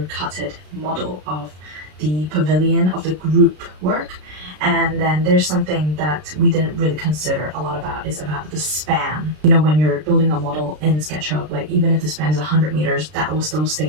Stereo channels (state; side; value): late; left; 33 ms